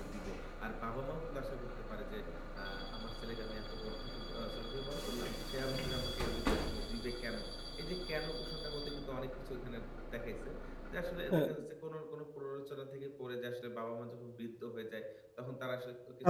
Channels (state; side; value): identical; both; correlation 1.00